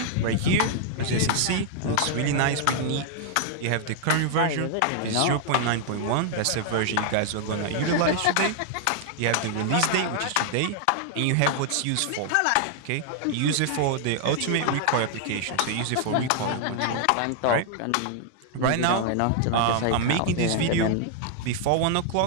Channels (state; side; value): different; both; correlation 0.00